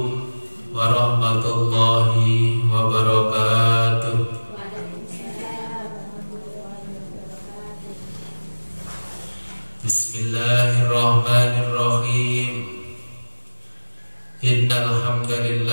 warahmatullahi wabarakatuh. Bismillahirrahmanirrahim. Innal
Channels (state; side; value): inverted; both; correlation -1.00